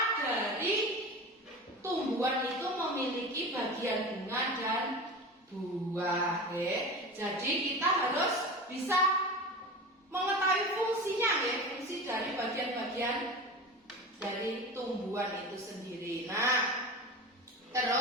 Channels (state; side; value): normal; both; correlation 0.31